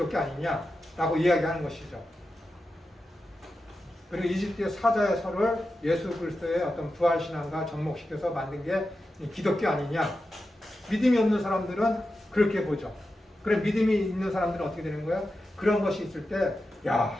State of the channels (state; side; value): normal; both; correlation 0.91